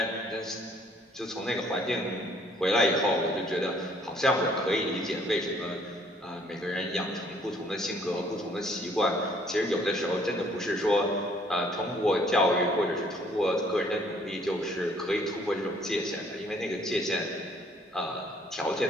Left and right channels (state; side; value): normal; both; correlation 0.61